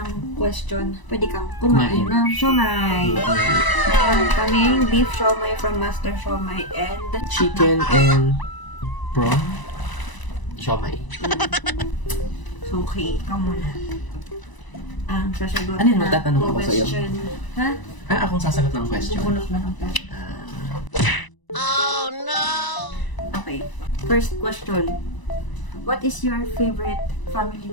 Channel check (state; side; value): late; right; 1.0 ms